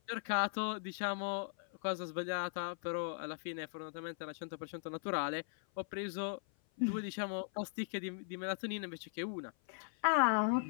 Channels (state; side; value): silent; right; 52 dB below the other